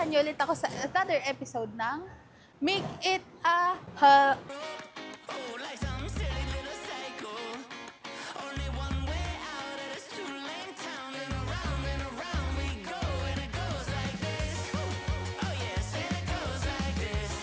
niyo ulit ako sa another episode ng Make It a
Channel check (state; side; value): identical; both; correlation 1.00